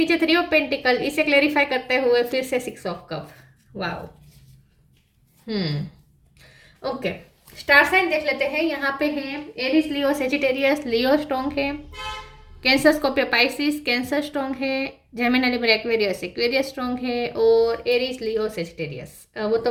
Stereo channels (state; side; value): identical; both; correlation 1.00